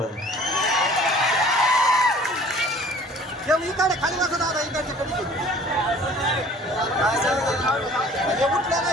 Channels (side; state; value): both; normal; correlation 0.50